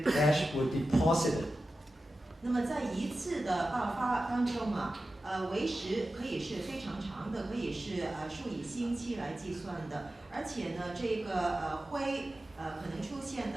ash were deposited. 那么在一次的爆发当中为时可以是非常长的，可以是数以星期来计算的，而且呢，这个灰可能出现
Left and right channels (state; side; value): normal; both; correlation 0.93